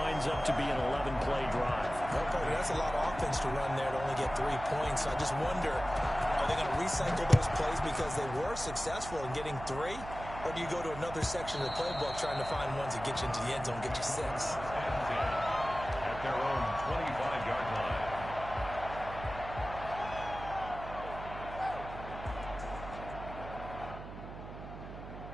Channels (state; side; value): noise; right; hum, 11 dB below the sound